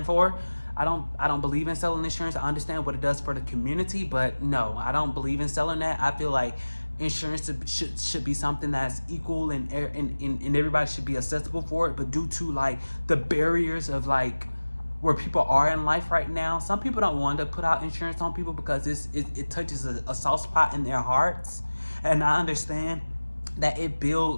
for. I don't believe in selling insurance. I understand what it does for the community, but no, I don't believe in selling that. I feel like insurance should be something that's equal and everybody should be accessible for it. But due to like the barriers of like where people are in life right now, some people don't want to put out insurance on people because it touches a soft spot in their hearts. And I understand that it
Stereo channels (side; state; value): both; inverted; correlation -1.00